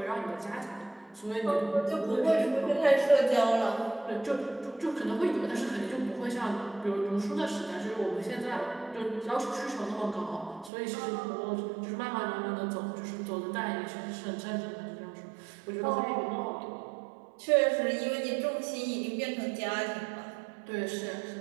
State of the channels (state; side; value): drops out; left; at 10.7 s